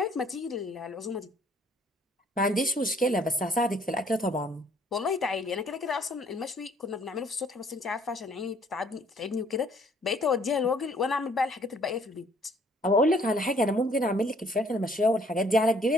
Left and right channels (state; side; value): normal; both; correlation 0.61